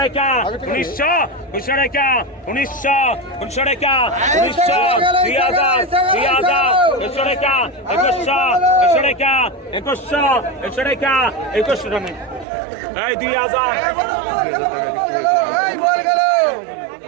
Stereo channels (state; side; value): drops out; left; at 12.5 s